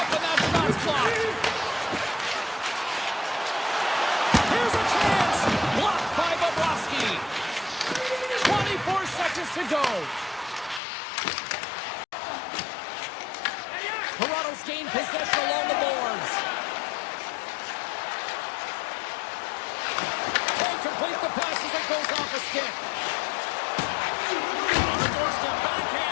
and that shot's blocked. Here's a chance. Blocked by Bobrovsky. 24 seconds to go. Toronto's gained possession along the boards. Can't complete the pass as it goes off a stick. On the doorstep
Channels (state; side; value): drops out; right; at 10.8 s